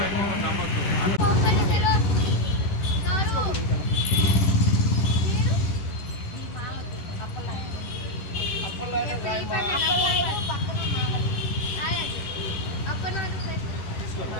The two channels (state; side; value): late; right; 10 ms